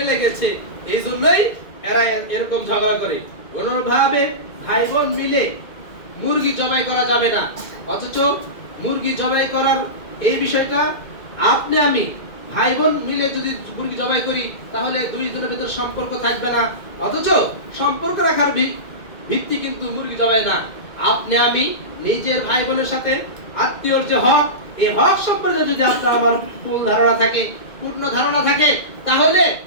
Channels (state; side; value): late; right; 2.1 ms